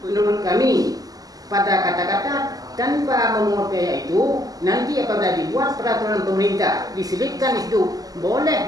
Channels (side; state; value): left; late; 0.17 ms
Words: Menurut kami, pada kata-kata tanpa memungut biaya itu, nanti apabila dibuat peraturan pemerintah diselipkan itu boleh